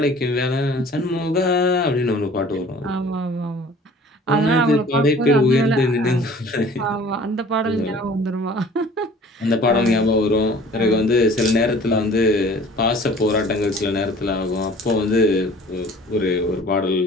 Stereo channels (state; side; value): normal; both; correlation 0.49